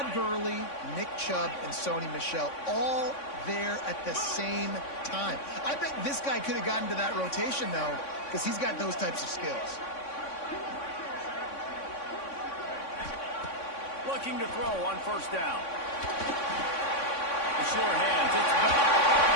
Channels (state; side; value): late; right; 3.6 ms